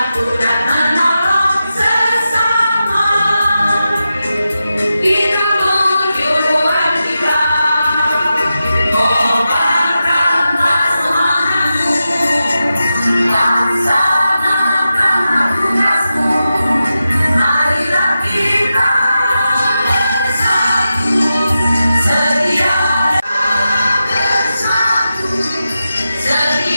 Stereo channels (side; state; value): both; inverted; correlation -0.91